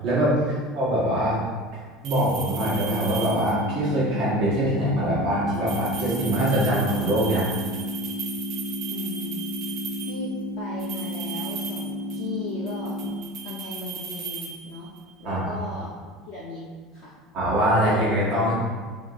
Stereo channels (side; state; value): both; normal; correlation 0.35